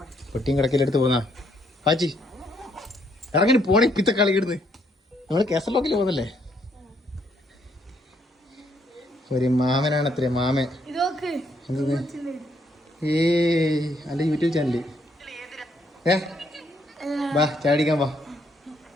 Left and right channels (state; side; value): normal; both; correlation 0.71